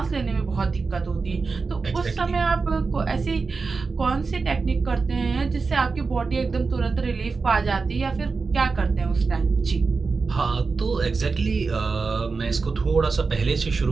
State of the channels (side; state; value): left; quieter; 4.5 dB